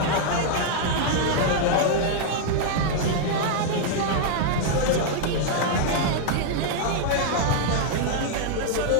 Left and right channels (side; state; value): both; different; correlation -0.01